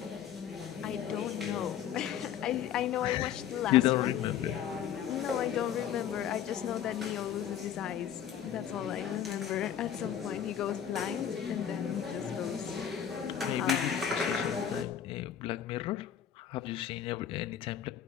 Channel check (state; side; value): quieter; right; 9.3 dB